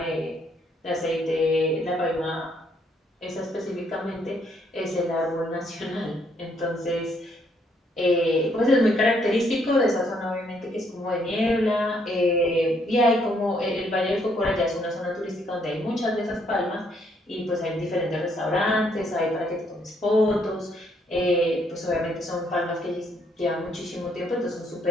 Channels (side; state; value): both; normal; correlation 0.70